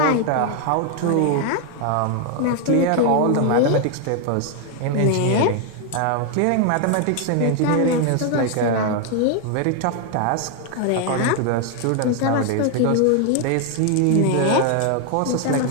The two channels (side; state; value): both; different; correlation 0.01